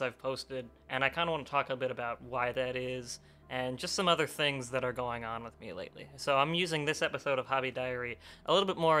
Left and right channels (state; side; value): identical; both; correlation 1.00